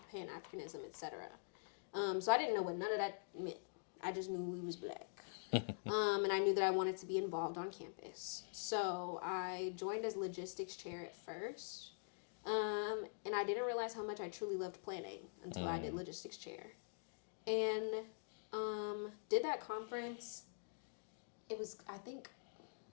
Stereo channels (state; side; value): silent; right; digital silence